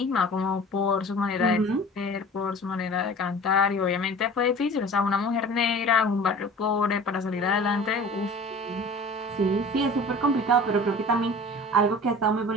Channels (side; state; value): both; normal; correlation 0.42